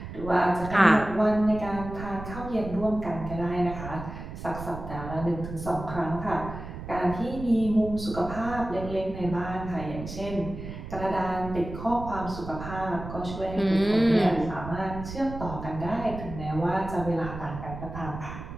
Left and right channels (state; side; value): noise; right; rumble, 10 dB below the sound